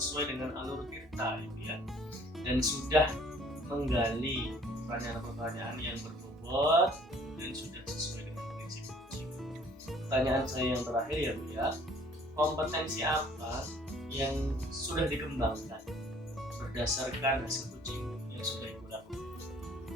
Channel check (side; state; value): both; normal; correlation 0.56